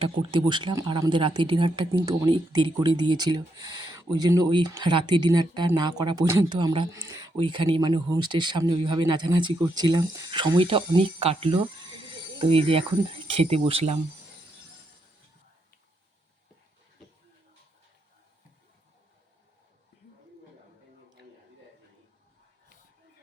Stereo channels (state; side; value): normal; both; correlation 0.79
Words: করতে বসলাম। আর আমাদের রাতের ডিনারটা কিন্তু অনেক দেরি করে দিয়েছিল, ওই জন্য ওই রাতের ডিনারটা না করা পর্যন্ত আমরা ওইখানে মানে হোমস্টের সামনে ওইভাবে নাচানাচি করছিলাম। সময়টা অনেক কাটলো। তো এই যে এখন খেতে বসলাম।